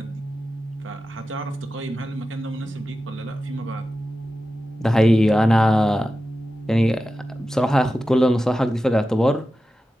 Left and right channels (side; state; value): both; normal; correlation 0.93